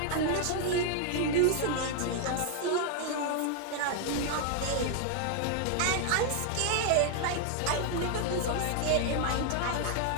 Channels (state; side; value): different; both; correlation 0.00